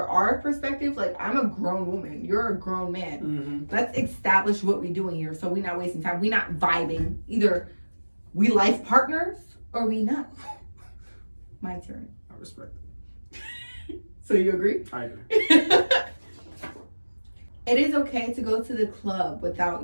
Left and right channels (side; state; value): both; inverted; correlation -1.00